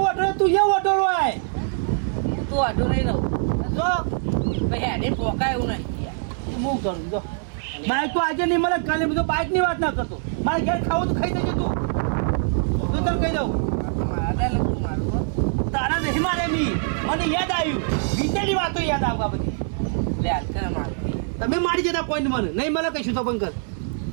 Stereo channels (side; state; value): left; silent; 63 dB below the other